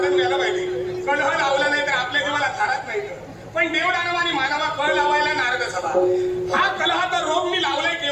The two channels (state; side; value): identical; both; correlation 1.00